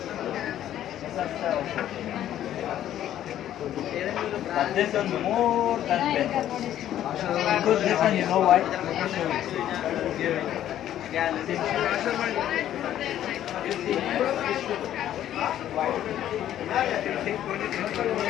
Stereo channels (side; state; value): right; quieter; 11.7 dB